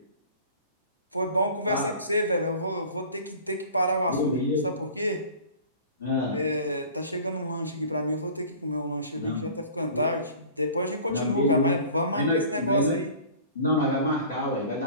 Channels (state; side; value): inverted; both; correlation -0.44